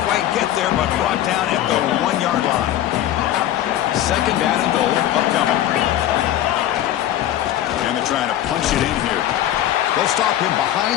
quite get there, but brought down at the 1-yard line. Second down and goal, upcoming. And they're trying to punch it in here. They'll stop him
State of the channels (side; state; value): right; quieter; 12.5 dB